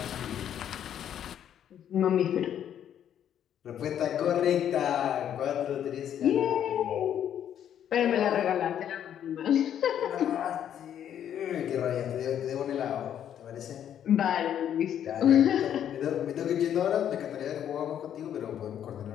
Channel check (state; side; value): quieter; right; 9.9 dB